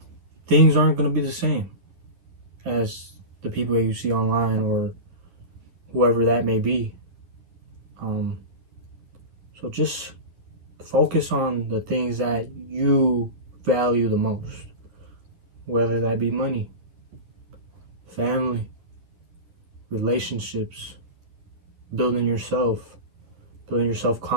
things aren't going to be the same as the people that you see online or whoever that may be. So just focus on the things that you value the most, whether that be money, family, relationships, building your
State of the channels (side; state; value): left; late; 11 ms